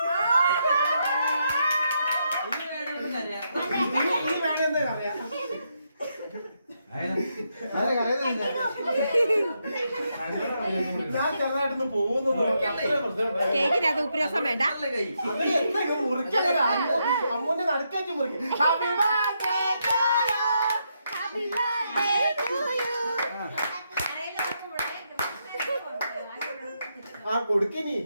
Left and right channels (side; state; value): both; inverted; correlation -0.80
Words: ഞാൻ ചെറുതായിട്ടൊന്ന് പോകുന്നു. കേക്കിനകത്ത് ഉപ്പുരസം വേണ്ട. അമ്മൂന്റെ നടുക്കേക്ക് മുറിക്കും. ആ കൊടുക്കിനി.